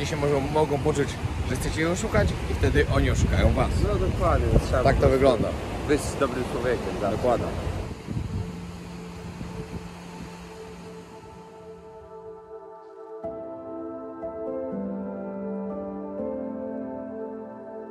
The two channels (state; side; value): identical; both; correlation 1.00